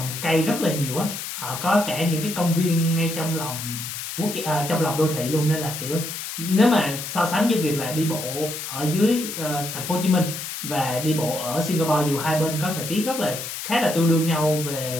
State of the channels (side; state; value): left; noise; hiss, 7 dB below the sound